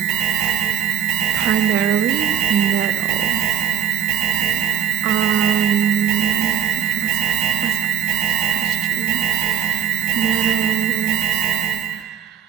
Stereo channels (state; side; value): quieter; left; 9.7 dB